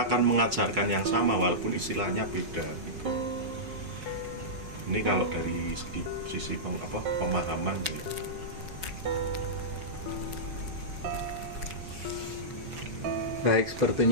mengajarkan yang sama walaupun istilahnya beda gitu. Ini kalau dari sisi pemahaman gitu. Baik,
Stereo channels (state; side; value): late; left; 5.2 ms